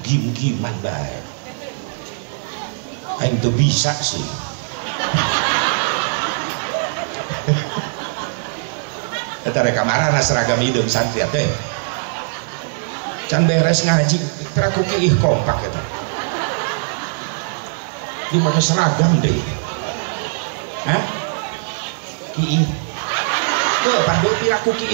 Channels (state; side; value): silent; left; digital silence